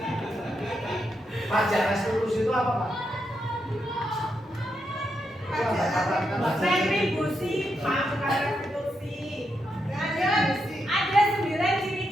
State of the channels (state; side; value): normal; both; correlation 0.82